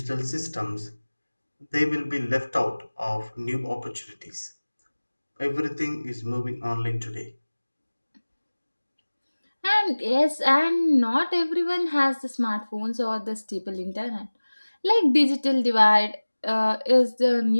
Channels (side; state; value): both; inverted; correlation -1.00